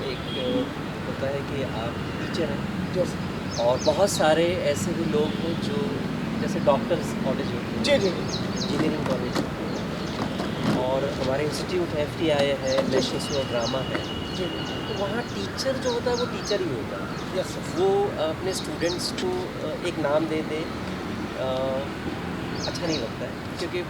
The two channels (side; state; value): both; identical; correlation 1.00